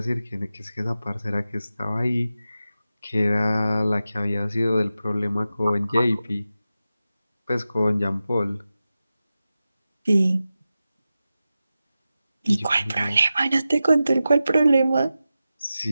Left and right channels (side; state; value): both; inverted; correlation -0.93